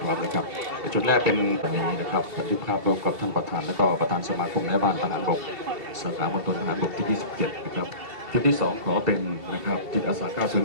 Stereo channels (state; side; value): late; left; 2.8 ms